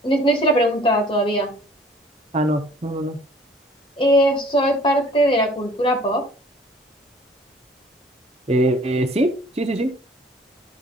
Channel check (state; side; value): normal; both; correlation 0.53